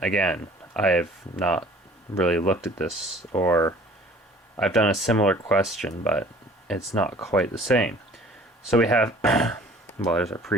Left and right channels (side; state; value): both; normal; correlation 0.50